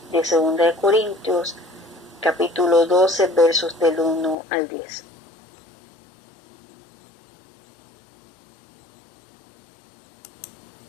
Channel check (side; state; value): right; drops out; at 4.4 s